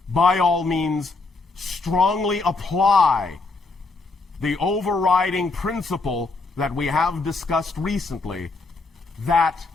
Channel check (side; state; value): right; quieter; 3.7 dB